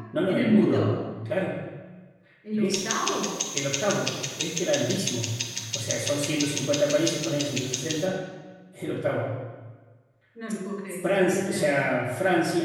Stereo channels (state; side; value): identical; both; correlation 1.00